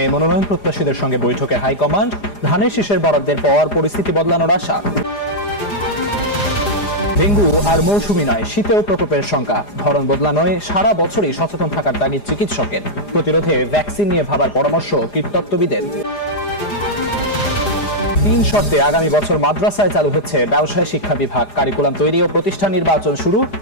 মনোনয়ন প্রত্যাশীদের সঙ্গে বৈঠকে হাইকমান্ড। ধানের শীষের বরাদ্দের পর পরিস্থিতি বদলানোর আশা। ডেঙ্গু আর মৌসুমি নয়, শীতেও প্রকোপের শঙ্কা। ধরন বদলানোয় সারা বছরই সচেতন থাকার তাগিদ চিকিৎসকের। প্রতিরোধে ভ্যাকসিন নিয়ে ভাবার পরামর্শ কীটতত্ত্ববিদের। 3 শর্তে আগামী বছর মাদ্রাসায় চালু হচ্ছে ব্যবসায় শিক্ষা বিভাগ। কারিকুলাম তৈরি ও প্রতিষ্ঠান নির্বাচন শুরু।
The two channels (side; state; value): right; late; 4.9 ms